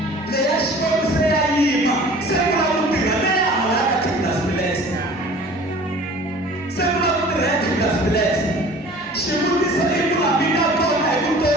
Le ya shkwetu se ya yima. Sekula mutiga. Le ya halaka kitlas bilesa. Sekula mutiga ya kitlas bilesa. Shimuti sa ikula bina kona ikuto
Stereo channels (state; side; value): normal; both; correlation 0.46